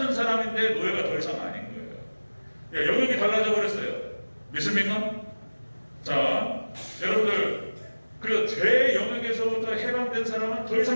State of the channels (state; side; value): inverted; both; correlation -1.00